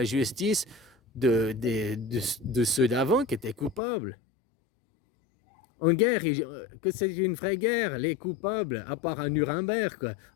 justice de ceux d'avant qui étaient coupables. En guerre, que c'est une vraie guerre, les coupables, à part à Nuremberg, quoi.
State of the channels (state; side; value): drops out; right; at 3.8 s